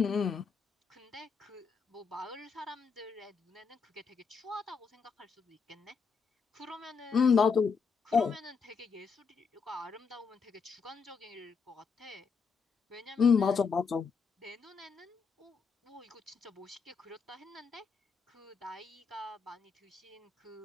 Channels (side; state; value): right; quieter; 5.4 dB